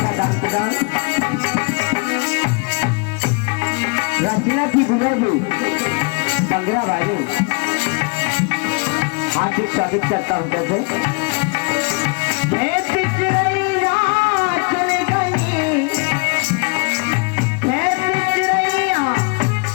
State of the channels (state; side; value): quieter; right; 33.1 dB